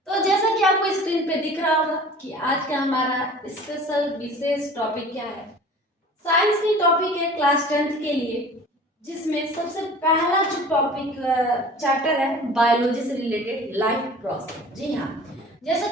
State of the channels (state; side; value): normal; both; correlation 0.43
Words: तो जैसा कि आपको स्क्रीन पे दिख रहा होगा कि आज का हमारा स्पेशल विशेष टॉपिक क्या है। साइंस की टॉपिक है क्लास 10th के लिए, जिसमें सबसे पहला जो टॉपिक चैप्टर है बायोलॉजी से रिलेटेड लाइफ प्रोसेस। जी हाँ, जैसा